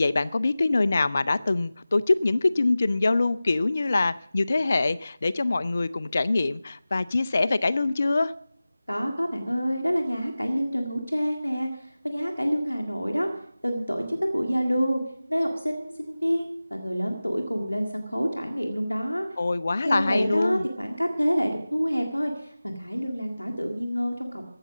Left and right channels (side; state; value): both; inverted; correlation -0.97